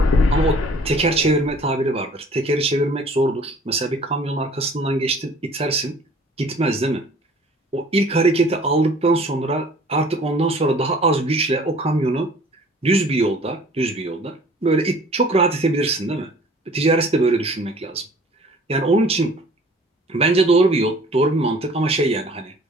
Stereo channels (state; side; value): normal; both; correlation 0.51